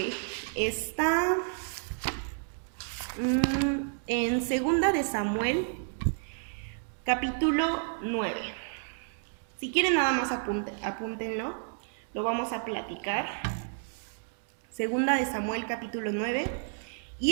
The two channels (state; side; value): silent; left; digital silence